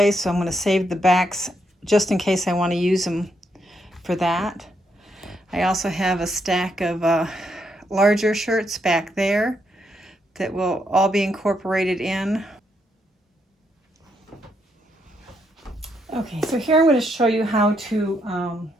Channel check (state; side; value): normal; both; correlation 0.77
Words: so I'm going to save the backs just in case I want to use them for that. I also have a stack of larger shirts back there that will all be incorporated in. Okay, so here I'm going to show you how to